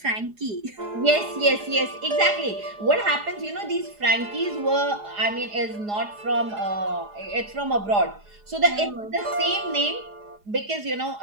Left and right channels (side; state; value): left; late; 4.8 ms